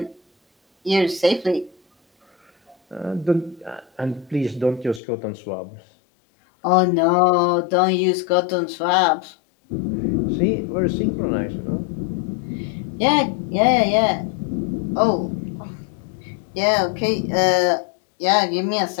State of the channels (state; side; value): drops out; right; at 5.0 s